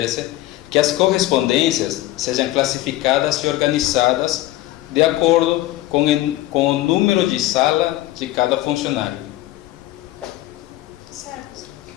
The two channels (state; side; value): quieter; right; 16.1 dB